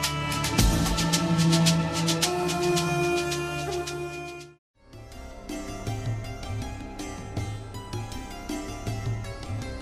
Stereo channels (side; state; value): both; identical; correlation 1.00